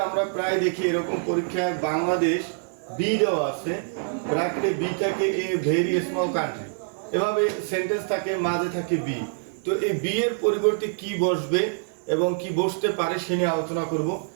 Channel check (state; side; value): silent; left; 61 dB below the other